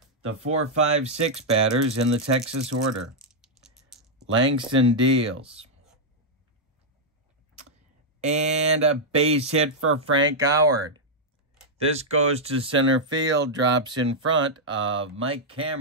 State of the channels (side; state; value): both; normal; correlation -0.04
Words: The 4, 5, 6 batters in the Texas order. Langston deals. And a base hit for Frank Howard. This goes to center field, drops in front of Mike